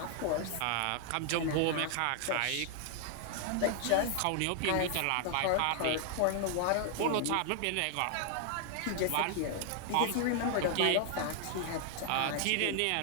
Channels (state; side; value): different; both; correlation 0.00